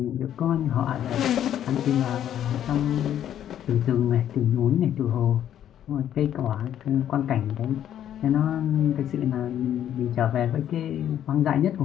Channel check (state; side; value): quieter; right; 10.6 dB